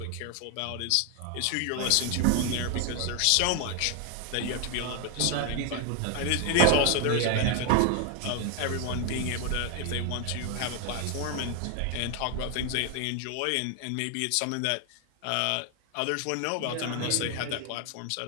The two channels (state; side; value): different; both; correlation 0.01